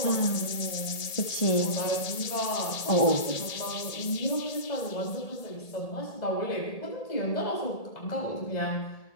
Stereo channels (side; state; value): right; late; 1.8 ms